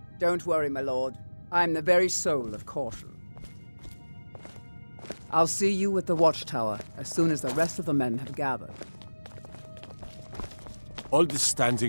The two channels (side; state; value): both; inverted; correlation -1.00